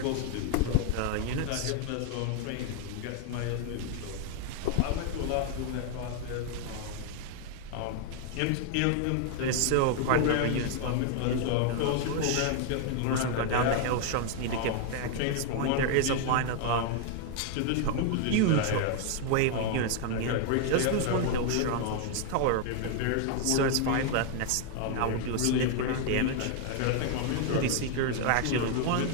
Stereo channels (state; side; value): different; both; correlation 0.00